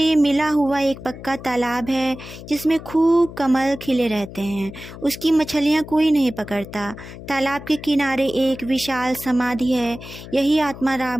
मिला हुआ एक पक्का तालाब है जिसमें खूब कमल खिले रहते हैं। उसकी मछलियाँ कोई नहीं पकड़ता। तालाब के किनारे एक विशाल समाधि है। यही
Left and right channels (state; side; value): noise; left; hum, 14 dB below the sound